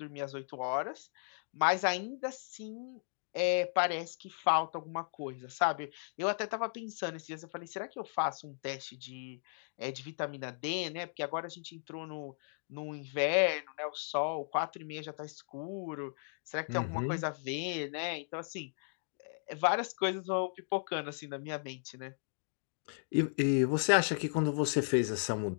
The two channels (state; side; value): silent; right; digital silence